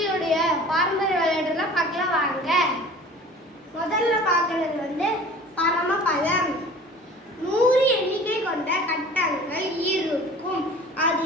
பாரம்பரிய விளையாட்டெல்லாம் பார்க்கலாம் வாங்க. முதல்ல பார்க்கறது பரமபதம். 100 எண்ணிக்கை கொண்ட கட்டங்கள் இருக்கும்.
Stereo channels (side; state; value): both; normal; correlation 0.44